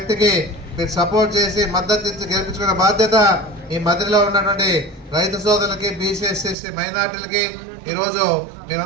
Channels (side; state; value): left; drops out; at 6.6 s